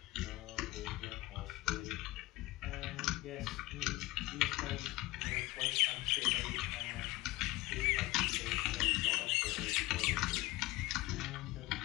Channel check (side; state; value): right; quieter; 19.8 dB